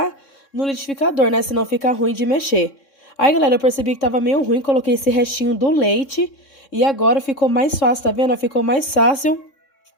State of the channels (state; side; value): late; right; 3.6 ms